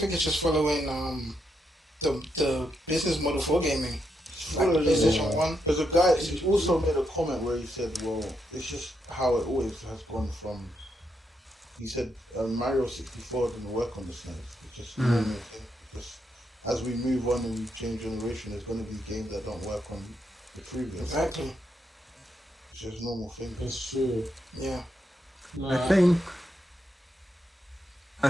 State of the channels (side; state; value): both; normal; correlation 0.81